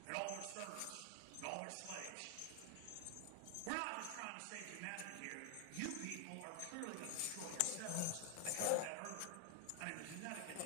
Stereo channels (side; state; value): both; different; correlation 0.00